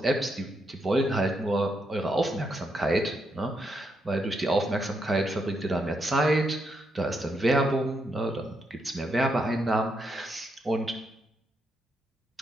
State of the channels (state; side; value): normal; both; correlation 0.80